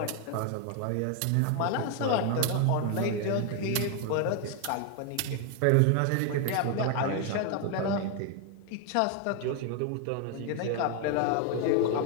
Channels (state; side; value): different; both; correlation 0.01